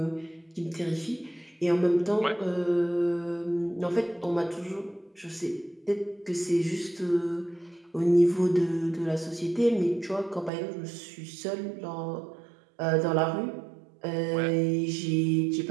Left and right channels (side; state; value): left; drops out; at 10.5 s